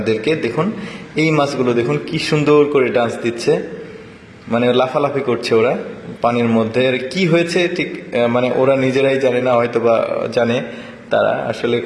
দেখুন এই মাছগুলো দেখুন কি সুন্দর করে ডান্স দিচ্ছে, মানে লাফালাফি করছে ওরা পানির মধ্যে। আর কি হয়েছে ঠিক মানে ওরা নিজেরাই জানে না, হয়তো বা জানে। তারা আসলে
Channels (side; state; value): both; identical; correlation 1.00